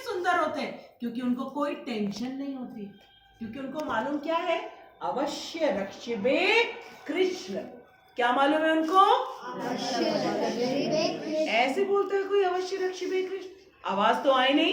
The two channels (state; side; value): identical; both; correlation 1.00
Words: सुंदर होते हैं, क्योंकि उनको कोई टेंशन नहीं होती, क्योंकि उनको मालूम क्या है? अवश्य रक्षिबे कृष्ण। क्या मालूम है उनको? ऐसे बोलते हैं कोई, अवश्य रक्षिबे कृष्ण। आवाज तो आई